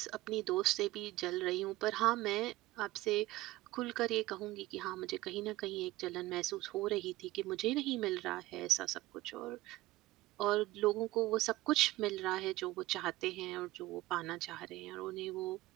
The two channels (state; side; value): quieter; left; 18.0 dB